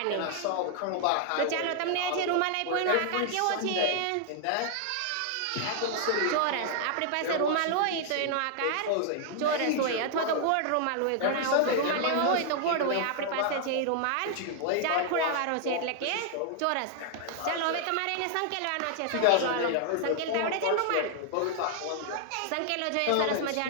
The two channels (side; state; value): both; different; correlation 0.00